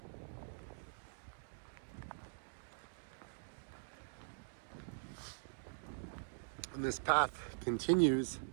And this path continues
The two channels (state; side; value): silent; left; digital silence